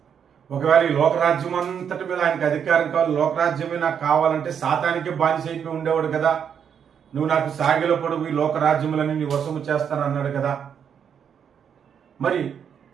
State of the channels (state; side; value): quieter; left; 7.8 dB